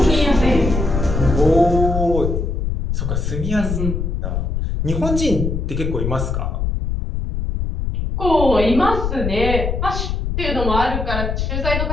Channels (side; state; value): left; noise; rumble, 2 dB below the sound